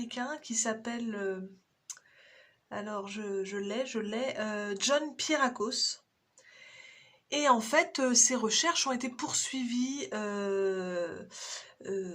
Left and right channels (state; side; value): identical; both; correlation 1.00